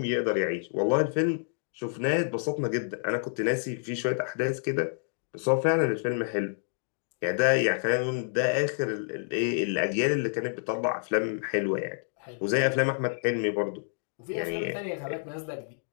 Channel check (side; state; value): right; silent; digital silence